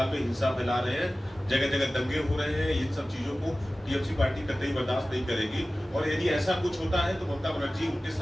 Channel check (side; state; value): both; normal; correlation 0.96